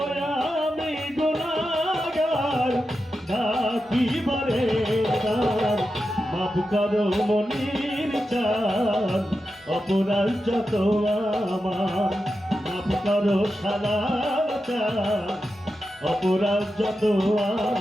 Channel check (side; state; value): both; normal; correlation 0.90